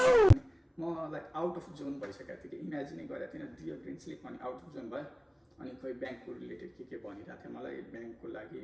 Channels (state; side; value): identical; both; correlation 1.00